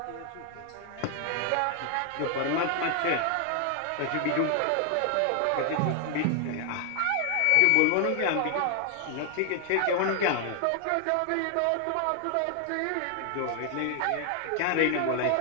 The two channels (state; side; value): different; both; correlation 0.00